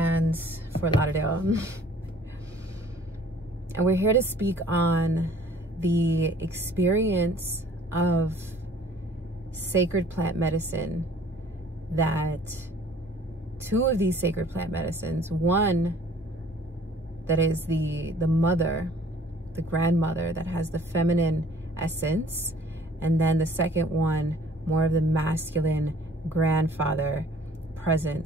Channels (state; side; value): normal; both; correlation 0.54